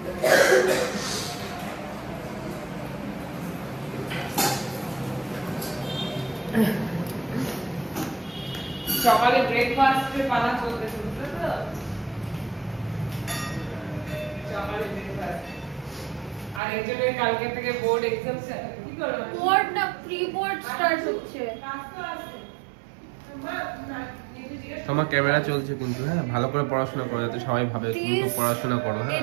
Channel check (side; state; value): left; drops out; at 16.6 s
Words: সকালে ব্রেকফাস্টের পালা চলতেছে, বুঝলে তো? সকালে ব্রেকফাস্ট। আর একজনের কালকে থেকে বোর্ড এক্সাম। কি করো? বোর্ড না, প্রি বোর্ড স্টার্ট হচ্ছে। তোমার ক্যামেরা চলছে কিন্তু, হ্যাঁ ভালো করে পড়াশোনা করো যাতে সবাই ভাবে তুমি তো পড়াশোনা করো। হ্যাঁ